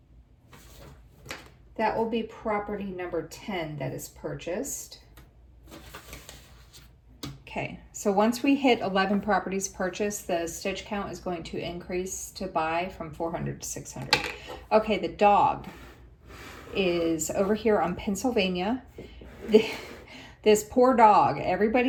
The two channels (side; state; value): both; identical; correlation 1.00